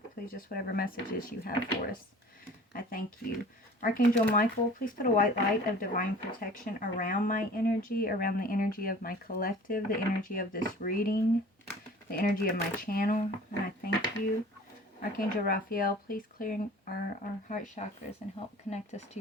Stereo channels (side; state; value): both; normal; correlation 0.45